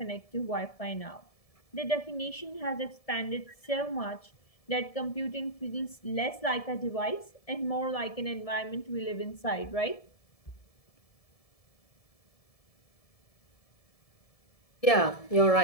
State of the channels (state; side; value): late; right; 1.7 ms